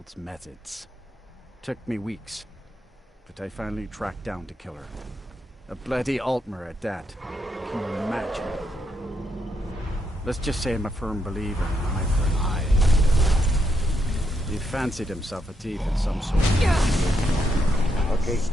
methods. Took me weeks, but I finally tracked down to kill her. A bloody Altmer at that. Can you imagine? Let's just say I'm a firm believer in an eye for an eye. He fancied himself a thief in some sort. Okay,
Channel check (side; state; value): both; normal; correlation 0.79